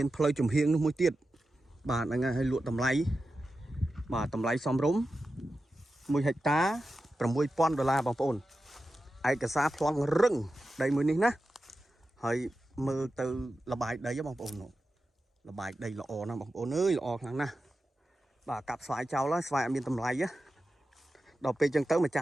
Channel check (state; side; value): normal; both; correlation 0.92